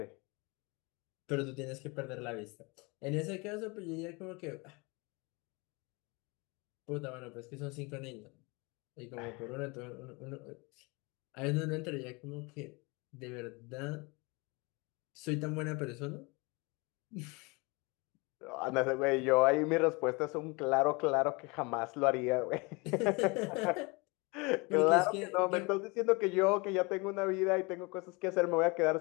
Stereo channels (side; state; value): right; quieter; 27.7 dB